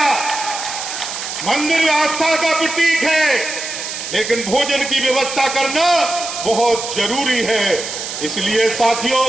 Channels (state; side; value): noise; right; hiss, 6 dB below the sound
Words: मंदिर आस्था का प्रतीक है, लेकिन भोजन की व्यवस्था करना बहुत जरूरी है। इसलिए साथियों,